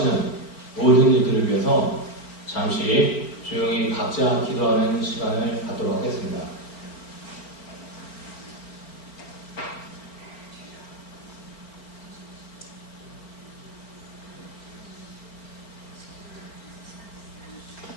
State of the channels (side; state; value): right; late; 4.3 ms